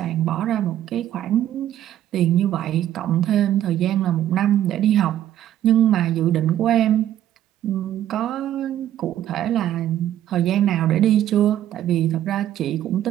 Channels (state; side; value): quieter; left; 11.9 dB